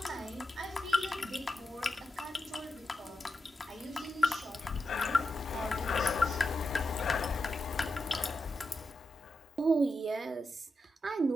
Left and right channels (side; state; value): both; normal; correlation 0.88